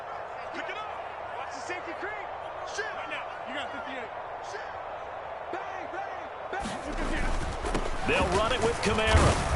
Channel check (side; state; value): both; identical; correlation 1.00